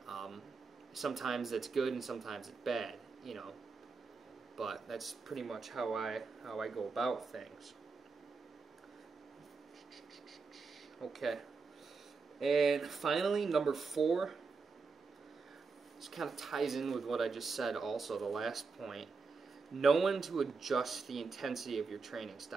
Sometimes it's good and sometimes it's bad, you know, but that's pretty much how I go about things. Okay, and finally, number 4, this kind of ties in with what I just said also, the last point. Know when to adjust the intensity of your training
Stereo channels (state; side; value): quieter; left; 4.6 dB